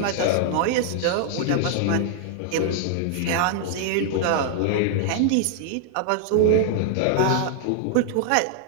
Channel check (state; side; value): different; both; correlation 0.00